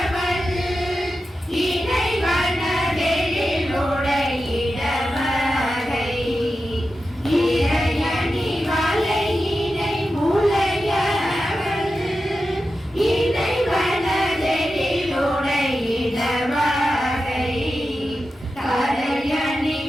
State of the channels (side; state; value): both; normal; correlation 0.91